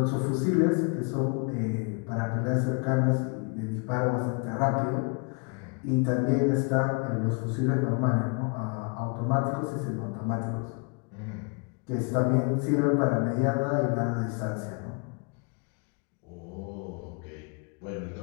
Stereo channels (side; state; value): right; quieter; 33.8 dB